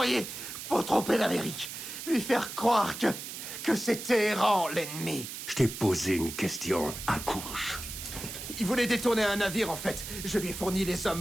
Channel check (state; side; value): noise; right; hiss, 9 dB below the sound